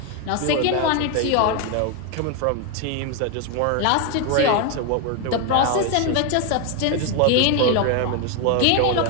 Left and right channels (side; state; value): both; different; correlation 0.01